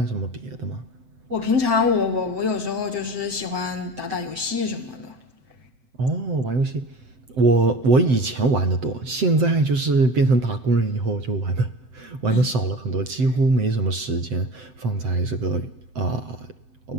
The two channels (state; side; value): late; left; 7.8 ms